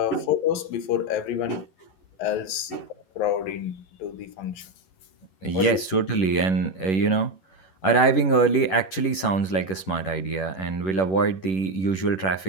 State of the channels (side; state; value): right; late; 11 ms